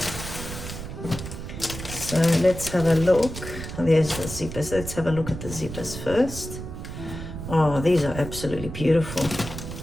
So let's have a look. There's the zippers. Let's have a look at the zippers first. Oh, these are absolutely beautiful.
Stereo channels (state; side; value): noise; right; rumble, 9 dB below the sound